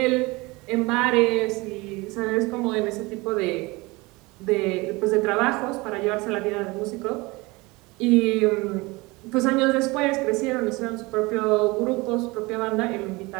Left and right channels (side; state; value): left; quieter; 23.7 dB